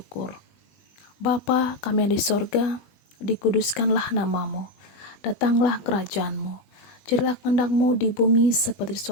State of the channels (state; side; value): late; right; 20 ms